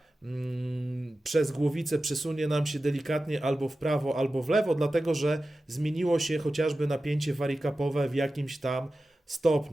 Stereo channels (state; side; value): normal; both; correlation 0.94